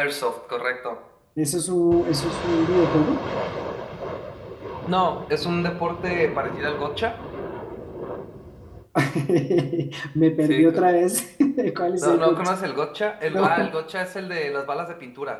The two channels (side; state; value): both; identical; correlation 1.00